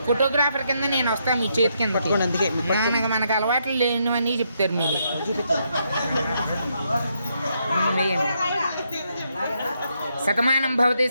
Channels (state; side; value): inverted; both; correlation -0.77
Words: ఫోటోగ్రాఫర్ కింద నేను వస్తాను మీ చేతి కింద. అందుకే మనకు అలవాట్లు లేనివన్నీ చెప్తారు మీరు. శతమానం భవతి